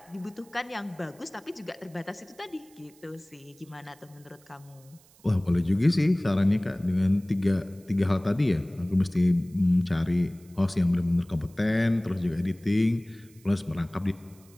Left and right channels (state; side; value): noise; right; hiss, 28 dB below the sound